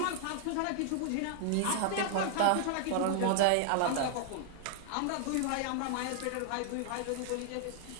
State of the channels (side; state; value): both; different; correlation -0.01